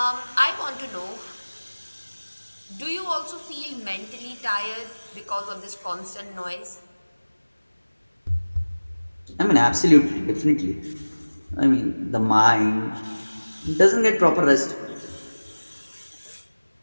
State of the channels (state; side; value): inverted; both; correlation -1.00